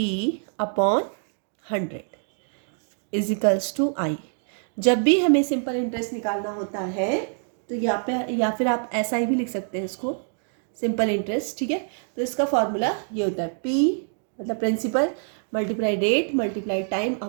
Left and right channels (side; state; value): left; silent; 61 dB below the other